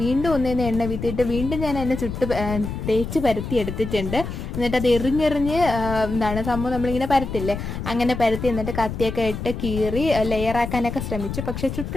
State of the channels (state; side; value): noise; left; rumble, 6 dB below the sound